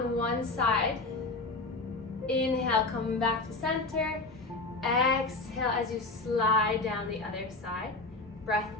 one side. Inhale, coming back to center. Exhale as you slide down the other side. Breath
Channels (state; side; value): quieter; right; 3.3 dB